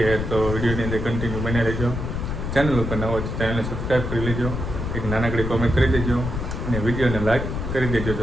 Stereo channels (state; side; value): noise; left; rumble, 4 dB below the sound